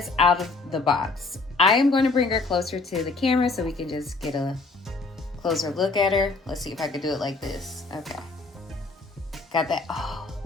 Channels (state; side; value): quieter; right; 3.7 dB